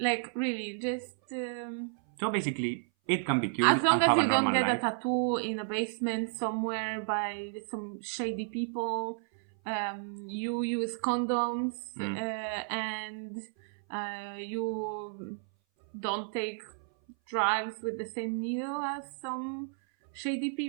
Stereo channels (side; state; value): left; silent; 56 dB below the other